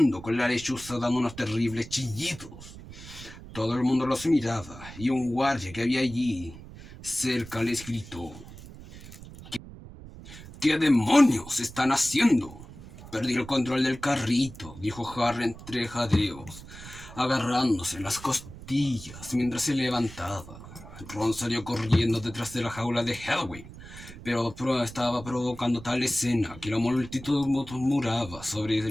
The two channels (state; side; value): noise; right; rumble, 15 dB below the sound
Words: con la lechuza dando unos terribles chillidos. Todo el mundo los miraba y un guardia que había allí cerca les gritó: ¿Qué demonios están haciendo? Perdí el control del carrito, dijo Harry entre jadeos, agarrándose las costillas mientras se levantaba. Ron salió corriendo detrás de la jaula de Hedwig, pero estaba provocando tal escena que la multitud murmuraba sobre